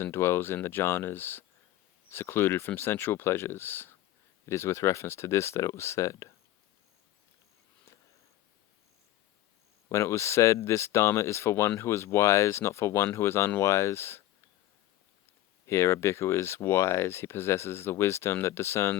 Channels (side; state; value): right; quieter; 14.2 dB